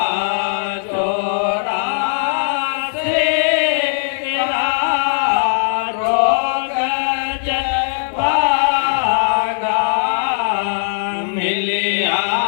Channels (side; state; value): right; silent; 59 dB below the other